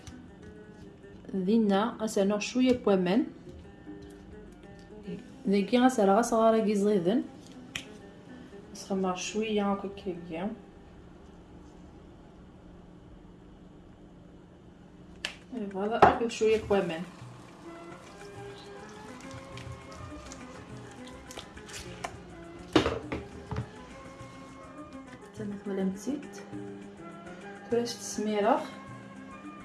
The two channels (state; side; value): identical; both; correlation 1.00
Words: دينا غنسنو شويه بوامان ذاكي غنسرا صغار كي زيدن نسخمر شويه هكا كيا. فوالا اخذ شويه بوامان. تمت ولا مزيت كراش السميره.